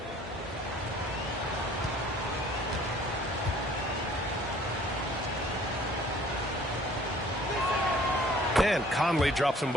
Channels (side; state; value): both; normal; correlation 0.54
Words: And Conley drops them